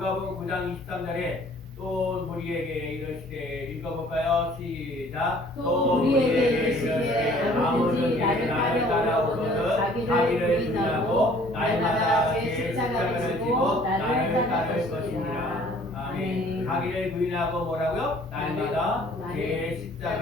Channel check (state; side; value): normal; both; correlation 0.55